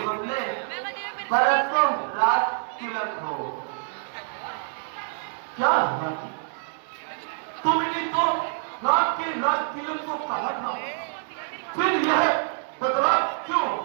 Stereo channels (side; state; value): left; silent; digital silence